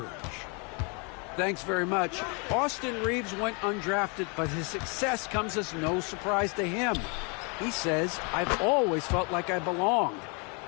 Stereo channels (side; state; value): right; quieter; 33.6 dB